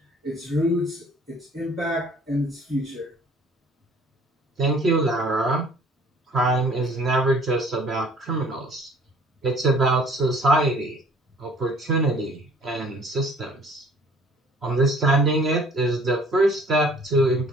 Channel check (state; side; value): normal; both; correlation 0.54